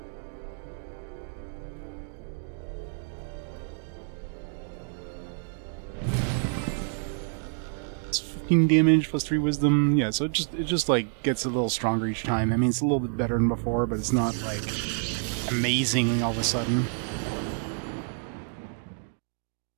Damage plus 3 wisdom. Yeah, so it just like gets a little stronger each time. I mean, it's a little bit better than before, but it's not like amazing all of a sudden.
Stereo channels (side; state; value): left; silent; 59 dB below the other